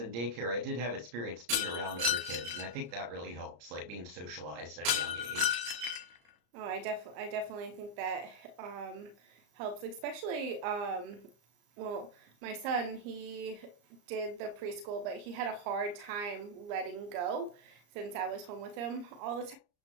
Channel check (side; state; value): left; late; 34 ms